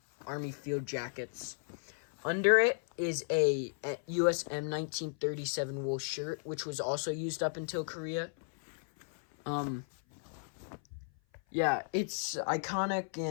Army field jackets. Under it is a US M1937 wool shirt, which was also used up until Korea. Yeah, it's iconic,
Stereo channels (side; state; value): right; silent; 55 dB below the other